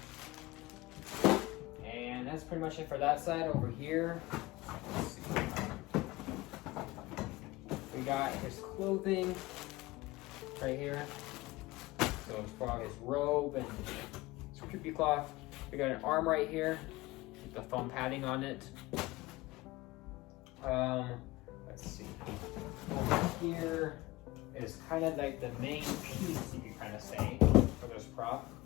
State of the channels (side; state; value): right; quieter; 20.0 dB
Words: And that's pretty much it for that side. Over here, let's see. We got his clothing right here. So as far as his robe and his creepy cloth. We got an arm right here with the foam padding on it. Let's see. Over here is kind of like the main piece, you could kind of say, for this prop.